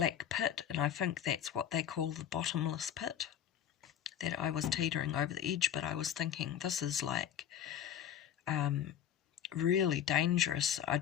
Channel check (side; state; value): right; quieter; 9.7 dB